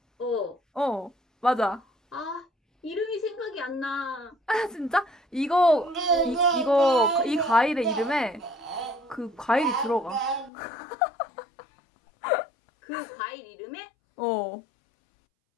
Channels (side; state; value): right; drops out; at 10.5 s